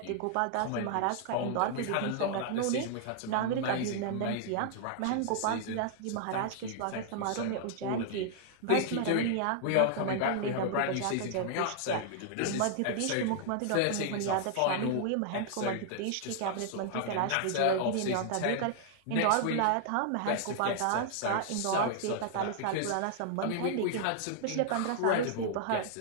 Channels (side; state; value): both; different; correlation -0.01